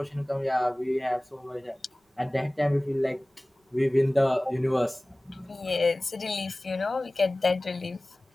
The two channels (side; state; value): both; normal; correlation 0.98